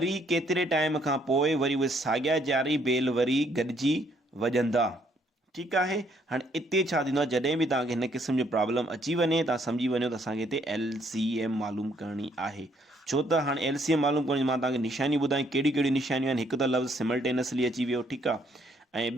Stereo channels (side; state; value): both; normal; correlation 0.68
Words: केतिरे टाइम खां पोइ वरी उहे साॻिया 4 बेल वरी गॾिजी वॼंदा। ठीकु आहे, हाणे हिते छा थींदो आहे, जॾहिं बि तव्हांखे हिन क़िस्म जो प्रॉब्लम अची वञे, तव्हां सम्झी वञो त असांखे हिते LCM मालूम करणी आहे। छो त हाणे LCM मालूम करणी, मां तव्हांखे निशानियूं ॿुधायूं कहिड़ियूं कहिड़ियूं निशानियूं आहिनि। हिकु त लफ़्ज़ सिमल्टेनियसली अची वियो, ठीकु आहे, ऐं